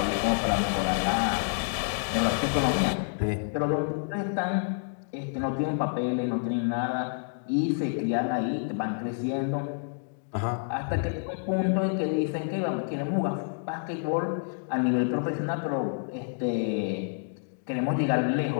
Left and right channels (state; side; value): silent; right; digital silence